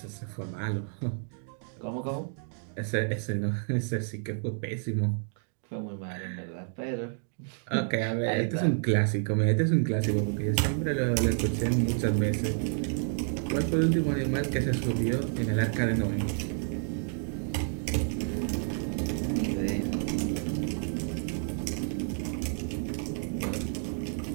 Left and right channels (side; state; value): left; silent; 58 dB below the other